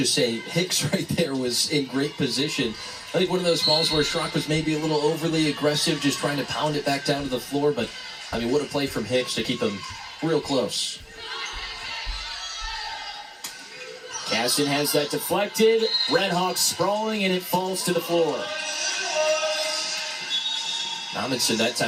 say Hicks right there was in great position. I think one of those balls where Schrock was maybe a little overly aggressive, just trying to pound it back down to the floor. But, I mean, what a play from Hicks to keep him real close. Caston has that deflected. Redhawks sprawling, and it falls to the floor. Amundsen that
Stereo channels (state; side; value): identical; both; correlation 1.00